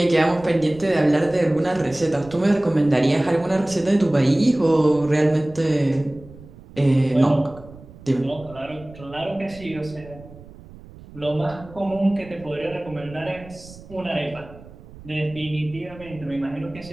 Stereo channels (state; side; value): noise; right; rumble, 19 dB below the sound